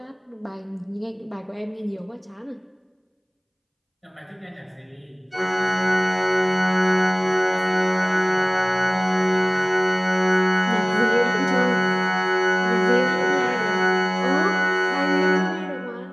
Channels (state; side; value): identical; both; correlation 1.00